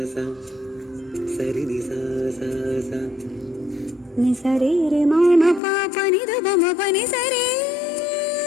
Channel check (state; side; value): drops out; right; at 5.6 s